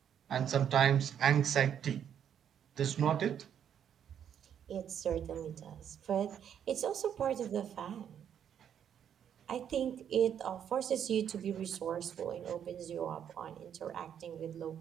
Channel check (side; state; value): left; quieter; 8.9 dB